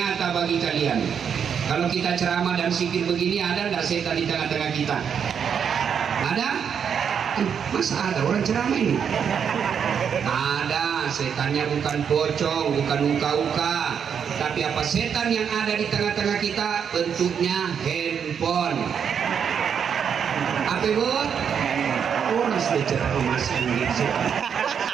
bagi kalian. Kalau kita ceramah dan zikir begini, ada enggak setan di tengah-tengah kita? Ada? Masa ada orang ceramah ini? Ada. Setannya bukan pocong, bukan uka-uka, tapi apa setan yang ada di tengah-tengah kita? Bentuknya handphone. Apa buat? Orang sudah ceramah masih gitu.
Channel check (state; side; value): quieter; left; 7.5 dB